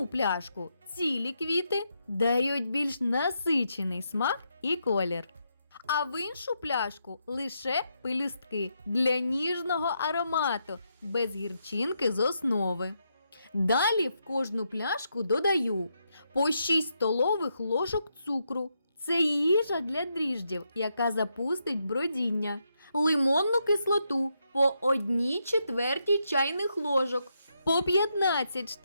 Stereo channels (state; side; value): inverted; both; correlation -0.81